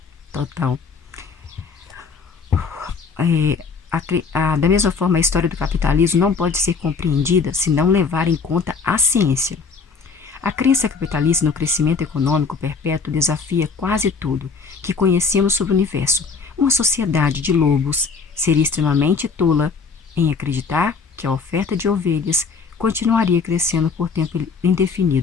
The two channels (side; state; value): right; quieter; 5.1 dB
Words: Da mesma forma, a história do capitalismo não pode ser compreendida se não levar em conta a ciência. A crença capitalista no crescimento econômico perpétuo desafia quase tudo que conhecemos sobre o universo. Uma sociedade de lobos seria extremamente tola em acreditar que a oferta de ovelhas continuaria crescendo por tempo